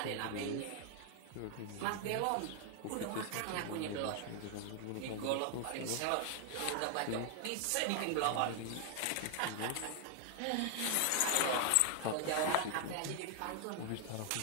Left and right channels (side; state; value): both; different; correlation 0.00